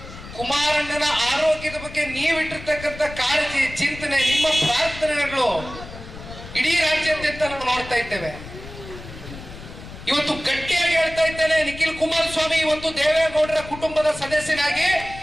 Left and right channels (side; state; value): left; noise; rumble, 14 dB below the sound